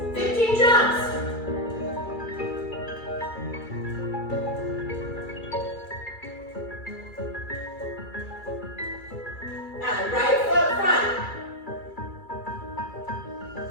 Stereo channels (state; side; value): late; right; 2.3 ms